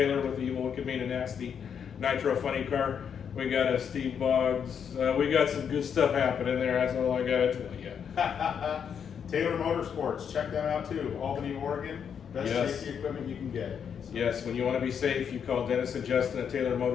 with the Evil Wicked Mean and Nasty Nitro Funny Car. We got a Steve Boggs. We got some good stuff happening there. That's all I got to tell you. Taylor Motorsports, check them out too. Albany, Oregon. Best Yes. safety equipment you can get. So, Yes, when you want to be safe, you call Dennis and Justin at Taylor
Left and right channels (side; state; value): right; quieter; 7.5 dB